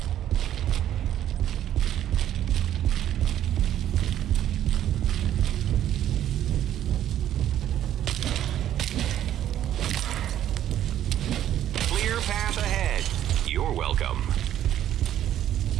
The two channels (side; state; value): left; quieter; 11.5 dB